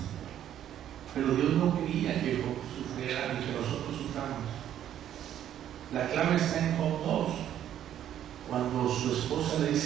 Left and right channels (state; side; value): quieter; left; 10.8 dB